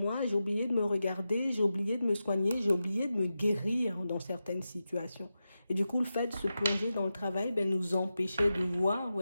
j'ai oublié de me regarder, j'ai oublié de me soigner, j'ai oublié de me guérir dans certaines situations. Et du coup, le fait de se plonger dans le travail ben, nous empêchait de voir, vous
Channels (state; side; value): inverted; both; correlation -0.91